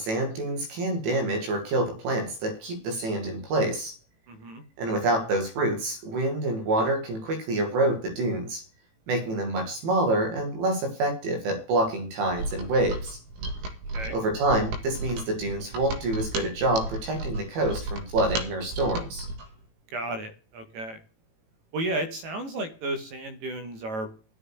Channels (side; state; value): left; late; 18 ms